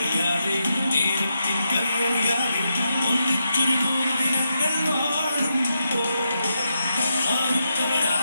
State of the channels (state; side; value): inverted; both; correlation -0.85